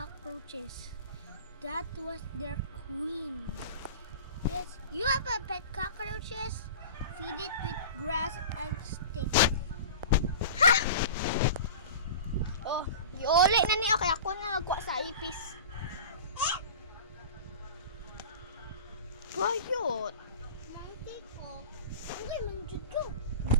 That was their queen. Yes, you have a pet cockroaches? Feed it with grass and sticks. Oh, iuli na niya kaya ako na nagwa sa ipis. Bayot. Monkey ko. Hindi, manjud ko.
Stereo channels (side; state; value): both; inverted; correlation -0.35